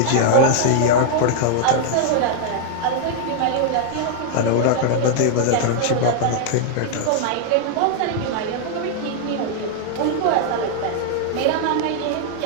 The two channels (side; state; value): both; different; correlation 0.00